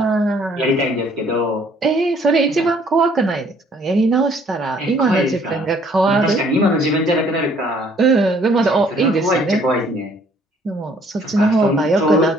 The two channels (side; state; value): both; normal; correlation 0.61